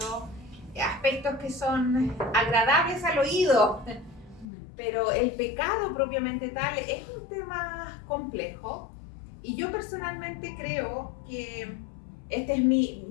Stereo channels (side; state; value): right; drops out; at 4.5 s